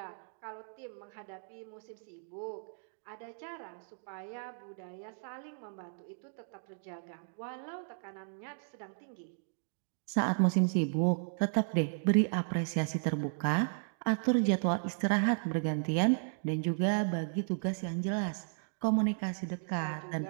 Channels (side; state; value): left; silent; digital silence